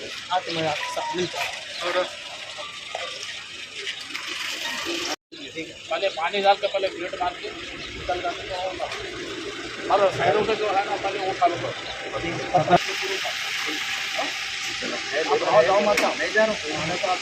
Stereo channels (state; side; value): identical; both; correlation 1.00